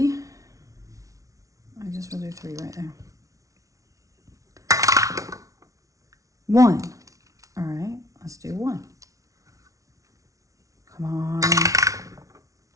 I just will do 3 right there. 1. All right, let's do 1. Come on.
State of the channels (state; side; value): late; left; 0.16 ms